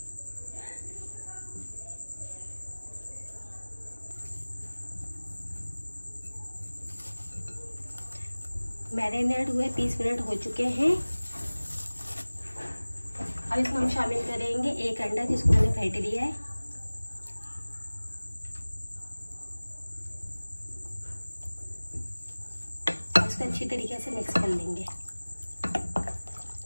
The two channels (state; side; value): inverted; both; correlation -1.00